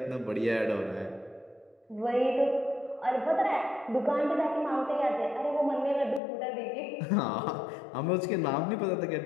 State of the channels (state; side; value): drops out; right; at 6.2 s